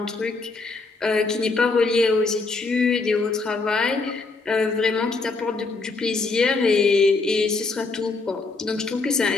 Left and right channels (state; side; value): quieter; right; 3.8 dB